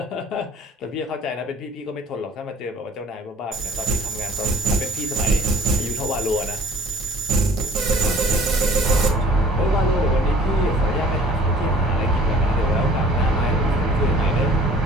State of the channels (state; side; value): normal; both; correlation 0.53